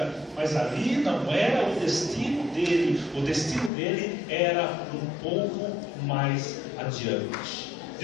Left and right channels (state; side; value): drops out; right; at 3.7 s